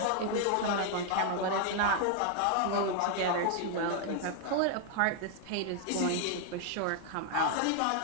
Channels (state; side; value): different; both; correlation 0.00